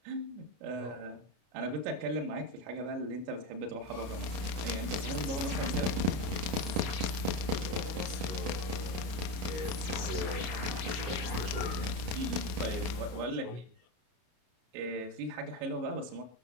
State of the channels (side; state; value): left; late; 32 ms